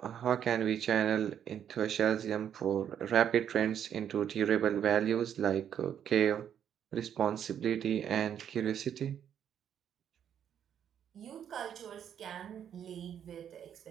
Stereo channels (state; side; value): quieter; left; 9.1 dB